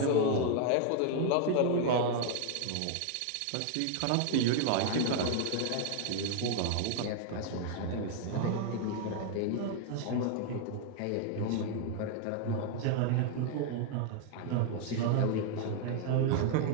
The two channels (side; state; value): both; different; correlation 0.00